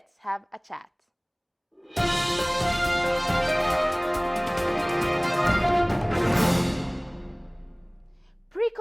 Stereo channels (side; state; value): both; identical; correlation 1.00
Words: have a chat.